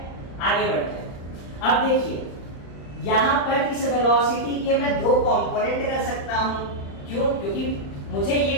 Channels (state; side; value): late; right; 35 ms